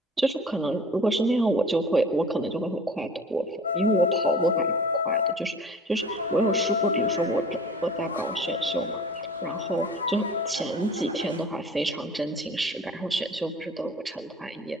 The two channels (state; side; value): normal; both; correlation 0.44